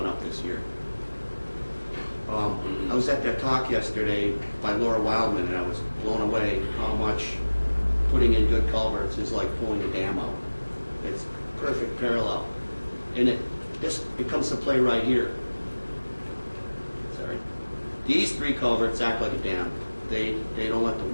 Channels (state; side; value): inverted; both; correlation -1.00